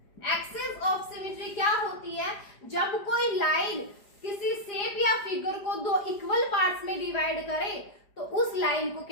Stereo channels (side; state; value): right; late; 5.0 ms